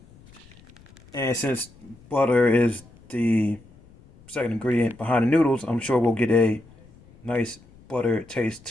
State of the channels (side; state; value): left; noise; rumble, 25 dB below the sound